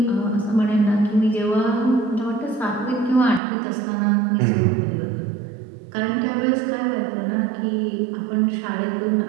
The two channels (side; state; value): left; drops out; at 3.4 s